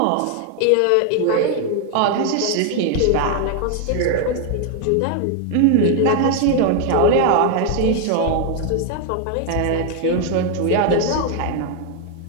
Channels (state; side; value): different; both; correlation 0.00